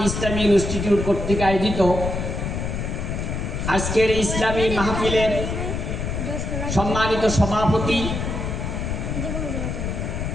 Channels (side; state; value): left; noise; rumble, 3 dB below the sound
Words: ইসলামী ইনস্টিটিউট কর্তৃক আয়োজিত আজকের ইসলামী মাহফিলের সম্মানিত সভাপতি